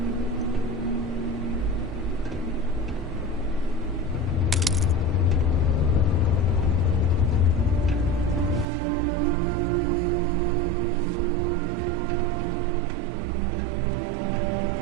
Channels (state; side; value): drops out; left; at 8.7 s